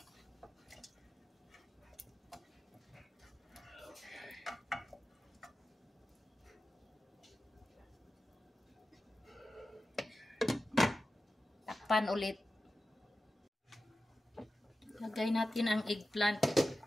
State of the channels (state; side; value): normal; both; correlation 0.93